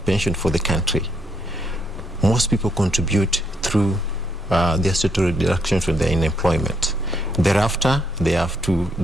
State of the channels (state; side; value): normal; both; correlation 0.75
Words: pension for the country. Most people contribute through their statutory deductions when they're in employment. Thereafter, they have to